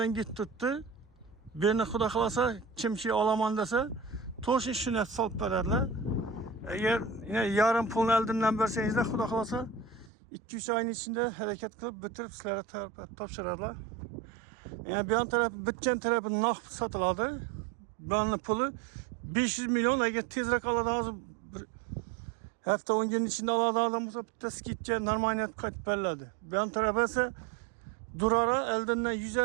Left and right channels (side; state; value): left; drops out; at 10.1 s